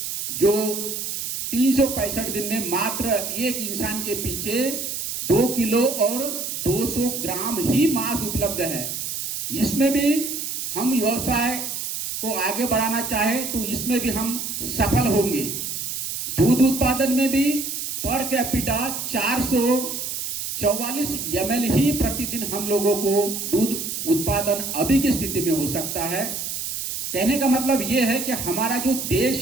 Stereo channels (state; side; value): noise; right; hiss, 4 dB below the sound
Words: जो 365 दिन में मात्र एक इंसान के पीछे 2 किलो और 200 ग्राम ही मांस उपलब्ध है। इसमें भी हम व्यवसाय को आगे बढ़ाना चाहे तो इसमें भी हम सफल होंगे। दूध उत्पादन में भी पर कैपिटा 444 ml ही प्रतिदिन हम लोगों को दूध उत्पादन अभी की स्थिति में हो सकता है। कहने का मतलब यह है कि हमारा जो